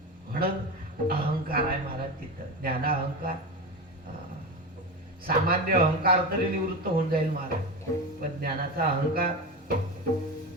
म्हणून अहंकार आहे महाराज तिथं. ज्ञाना अहंकार, सामान्य अहंकार तरी निवृत्त होऊन जाईल महाराज, पण ज्ञानाचा अहंकार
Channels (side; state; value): both; normal; correlation 0.22